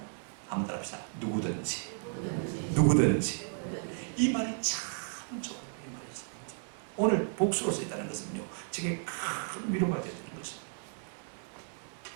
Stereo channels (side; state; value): left; silent; 55 dB below the other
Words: 한번 따라합시다. 누구든지. 이 말이 참 좋아요. 이 말이 참 좋아요. 오늘 복수로 써 있다는 것은요, 제게 큰 위로가 되는 것입니다.